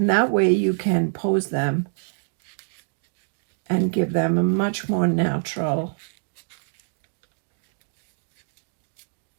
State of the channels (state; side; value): silent; left; digital silence